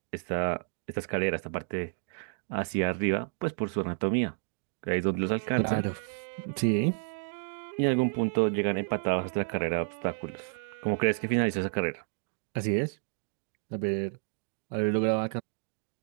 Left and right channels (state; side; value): silent; left; digital silence